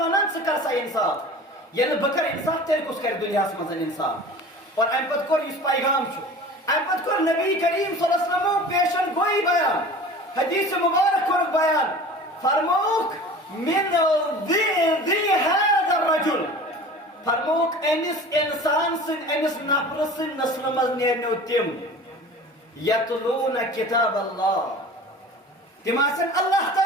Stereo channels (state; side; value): normal; both; correlation 0.40